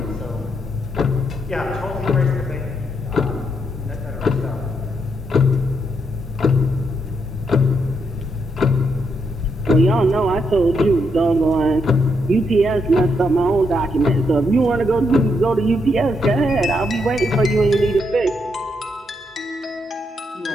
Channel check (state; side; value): normal; both; correlation 0.78